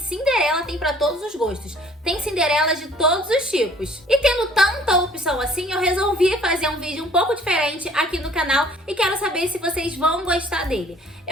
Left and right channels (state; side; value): normal; both; correlation 0.55